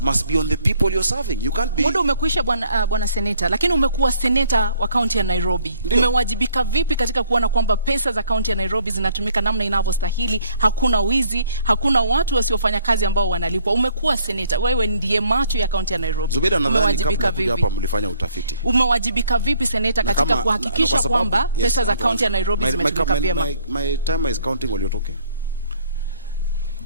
must be on the people you're serving. You can't be... Muda umekwisha bwana seneta, lakini umekuwa seneta wa kaunti ya Nairobi. Umewajibika vipi katika kuona kwamba pesa za kaunti ya Nairobi zinatumika namna inavyostahili, hakuna wizi, hakuna watu wasiofanya kazi ambao wanalipwa? Umekuwa seneta, wewe ndiye macho ya kaunti ya Nairobi. Zubeda, nadhani kabla kuja hapa mlifanya utafiti. Umewajibika vipi seneta katika kuhakikisha kwamba pesa za kaunti ya Nairobi zimetumika vyema? My time is counting while you're talking.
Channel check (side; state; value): both; inverted; correlation -0.62